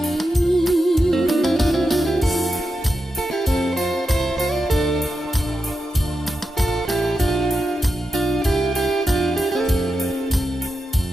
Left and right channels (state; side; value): normal; both; correlation 0.88